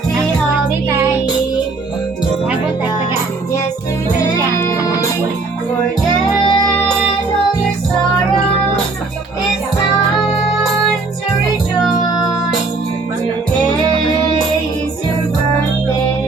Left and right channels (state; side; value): quieter; left; 3.7 dB